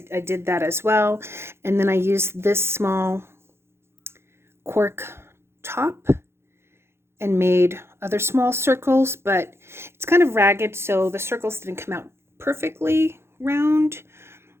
did that as well. And then I used this small cork top and made other small circles, but it's kind of ragged, so the circles didn't come out perfectly round.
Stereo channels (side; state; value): left; late; 0.12 ms